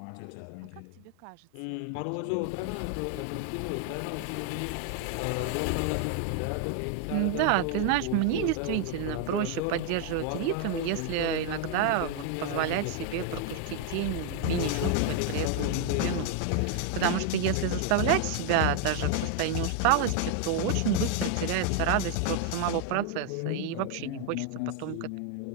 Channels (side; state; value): both; different; correlation 0.00